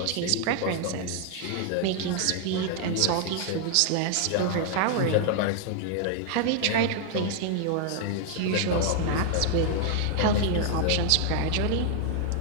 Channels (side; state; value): both; different; correlation 0.00